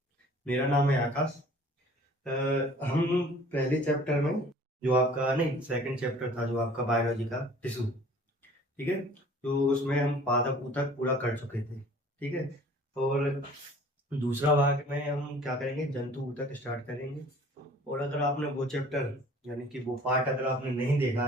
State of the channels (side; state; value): both; normal; correlation 0.50